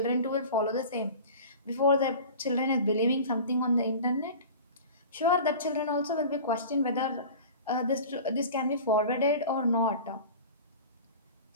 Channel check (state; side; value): inverted; both; correlation -0.37